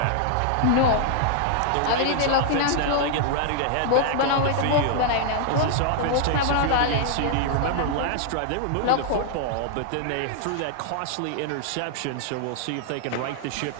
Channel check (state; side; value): different; both; correlation -0.01